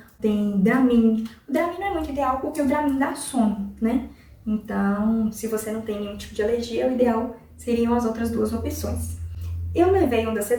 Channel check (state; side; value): identical; both; correlation 1.00